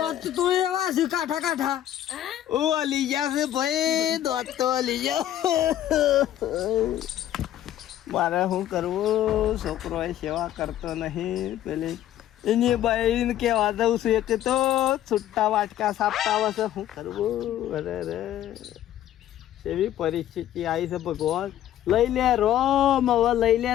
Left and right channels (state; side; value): quieter; right; 12.1 dB